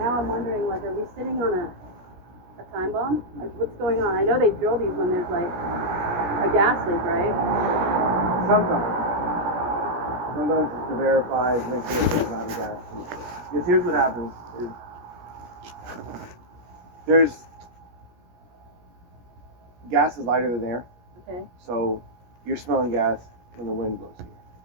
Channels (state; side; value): late; left; 17 ms